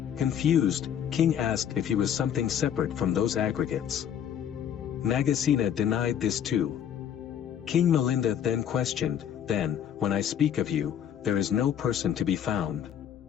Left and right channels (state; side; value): quieter; right; 9.3 dB